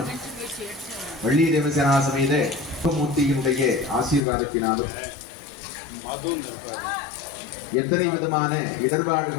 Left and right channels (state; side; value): drops out; right; at 4.2 s